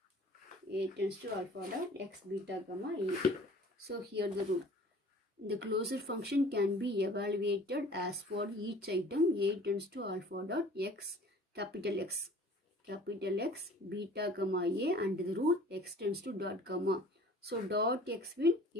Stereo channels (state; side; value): normal; both; correlation 0.48